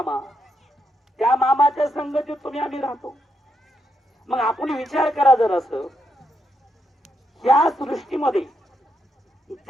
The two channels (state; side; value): normal; both; correlation 0.80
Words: त्या मामाच्या संगतीत तुम्ही आम्ही राहतो. मग आपण विचार करा जर असं, या सृष्टीमध्ये